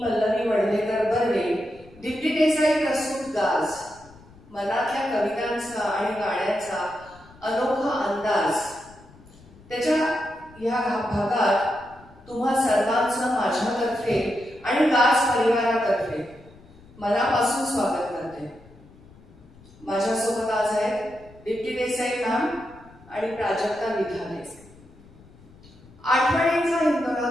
पल्लवी वडलेकर बर्वे, दीप्ती देसाई प्रस्तुत गाज, मनातल्या कवितांचा आणि गाण्यांचा अनोखा अंदाज, त्याच्या या भागात तुम्हा सर्वांचं माझ्यातर्फे आणि गाज परिवारातर्फे मनापासून स्वागत करते. माझ्यासोबत आज आहेत दीप्ती देसाई मॅम आणि प्राजक्ता विधाने. आठवणींचा हिंदोळा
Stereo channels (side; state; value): left; noise; rumble, 24 dB below the sound